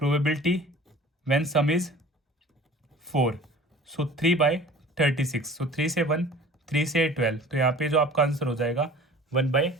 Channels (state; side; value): normal; both; correlation 0.44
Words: व्हेन सम इज 4, सो 3/36, सो 3 से 1, 3 से 12, तो यहाँ पे जो आपका आंसर हो जाएगा